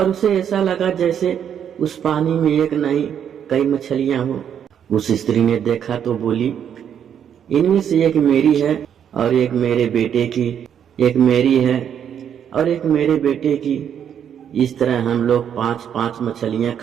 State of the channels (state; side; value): quieter; left; 8.7 dB